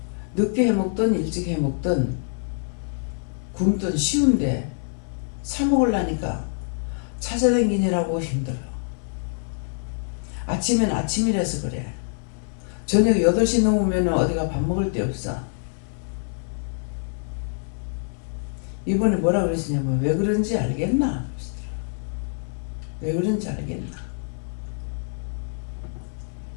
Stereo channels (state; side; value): silent; right; 62 dB below the other